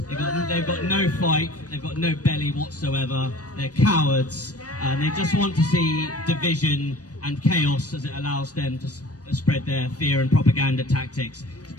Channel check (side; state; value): right; late; 0.68 ms